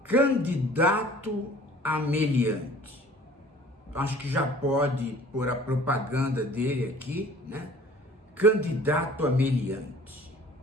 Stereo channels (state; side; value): normal; both; correlation 0.49